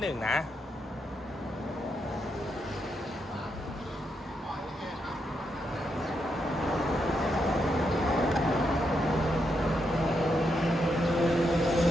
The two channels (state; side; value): normal; both; correlation 0.81